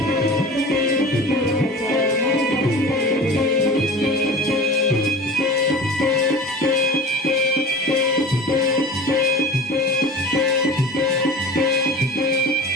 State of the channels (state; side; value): normal; both; correlation 0.37